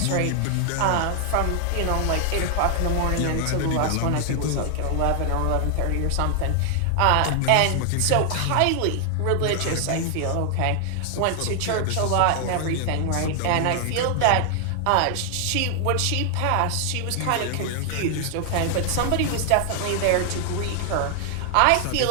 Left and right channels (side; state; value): both; different; correlation 0.00